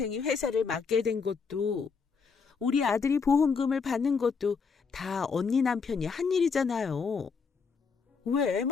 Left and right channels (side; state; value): right; quieter; 5.4 dB